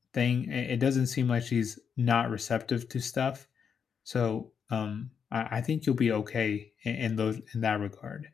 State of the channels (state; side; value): quieter; right; 6.9 dB